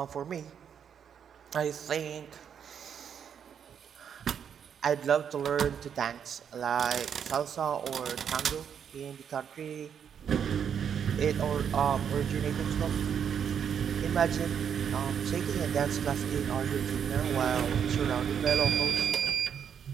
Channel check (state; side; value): quieter; left; 7.9 dB